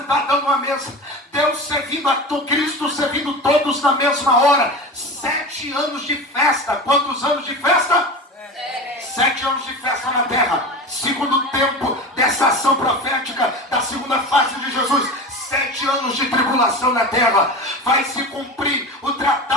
numa mesa. Deus servindo a Cristo, servindo todos na mesma hora. 7 anos de festa. Quantos anos de festa? 7 anos de festa na terra. Segundo tempo dessa ação profética da segunda fase de Jesus. 7 anos de tribulação na terra. Vai se cumprir o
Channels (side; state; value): both; normal; correlation 0.30